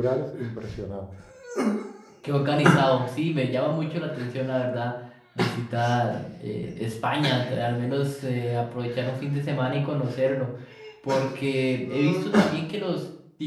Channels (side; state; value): both; identical; correlation 1.00